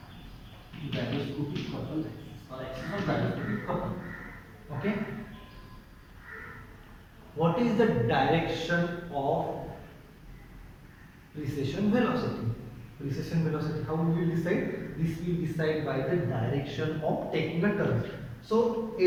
Gyroscopic couple axis, or axis of gyroscopic couple. Okay. What is the direction of precession velocity? Precession velocity, how we will decide? This will decide by the direction of taking a turn. So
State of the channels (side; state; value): both; identical; correlation 1.00